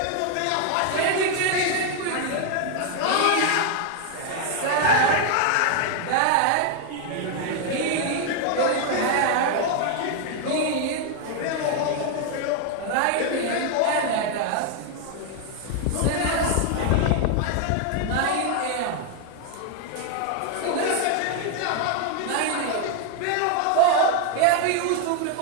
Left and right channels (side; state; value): both; different; correlation 0.00